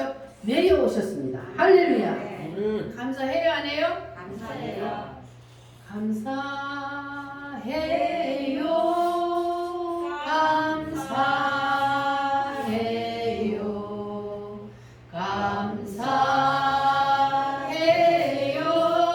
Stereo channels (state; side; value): identical; both; correlation 1.00